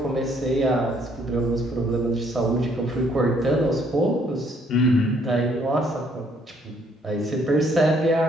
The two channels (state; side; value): normal; both; correlation 0.66